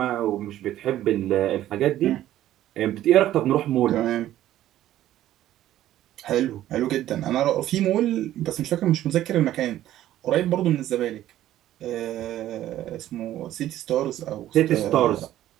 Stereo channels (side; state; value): left; quieter; 13.2 dB